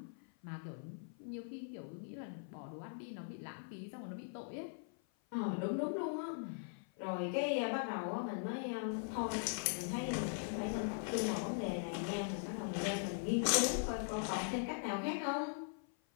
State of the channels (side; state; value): right; silent; 50 dB below the other